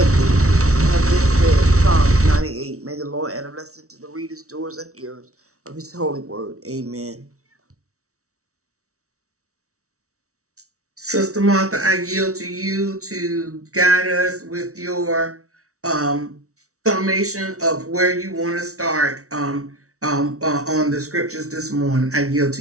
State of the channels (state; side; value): late; left; 0.64 ms